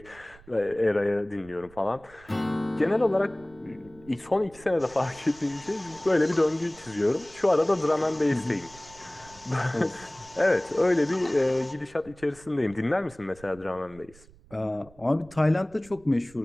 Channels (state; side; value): noise; right; rumble, 24 dB below the sound